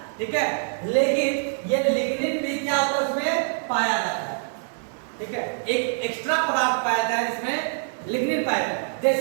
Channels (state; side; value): silent; left; 62 dB below the other